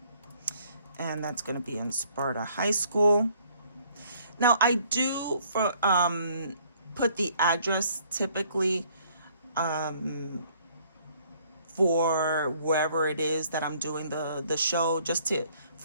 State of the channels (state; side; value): inverted; both; correlation -0.62